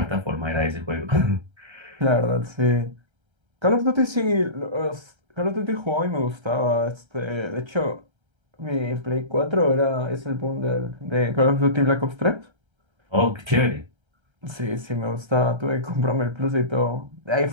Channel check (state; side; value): late; left; 1.3 ms